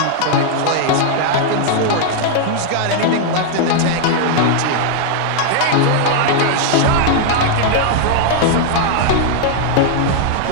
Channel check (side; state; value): both; different; correlation 0.00